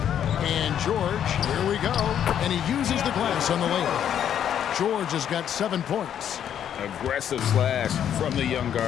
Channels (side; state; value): right; quieter; 9.5 dB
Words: George, here we go. And he uses the glass on the layup. George has got 7 points. Aggressive slash from the young